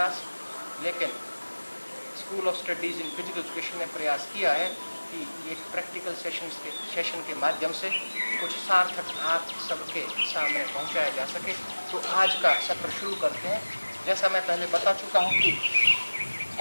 लेकिन school of studies in physical education ने प्रयास किया है कि एक प्रैक्टिकल सेशन के माध्यम से कुछ सार्थक आप सबके सामने पहुंचाया जा सके। तो आज का सत्र शुरू करते हैं। जैसा मैं पहले बता चुका हूं कि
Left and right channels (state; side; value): inverted; both; correlation -1.00